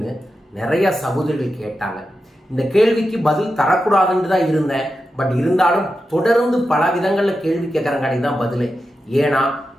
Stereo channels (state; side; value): normal; both; correlation 0.90